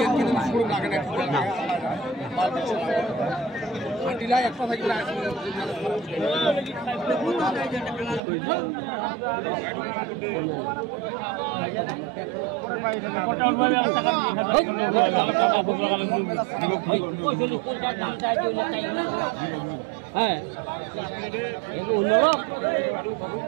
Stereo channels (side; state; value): left; drops out; at 8.2 s